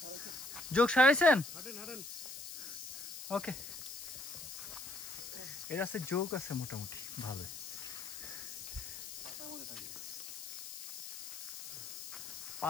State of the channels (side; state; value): left; noise; hiss, 9 dB below the sound